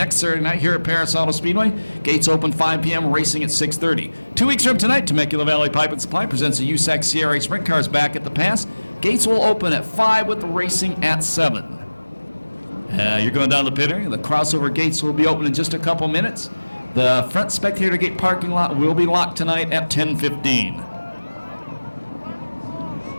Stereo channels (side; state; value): both; inverted; correlation -1.00